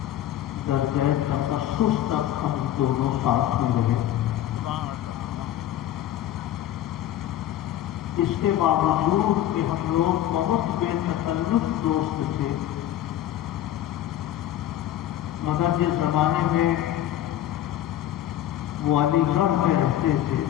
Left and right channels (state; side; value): quieter; right; 12.4 dB